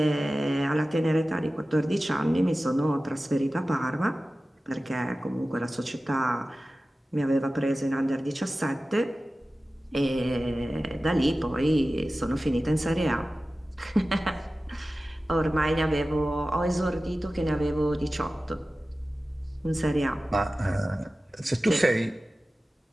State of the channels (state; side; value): normal; both; correlation 0.96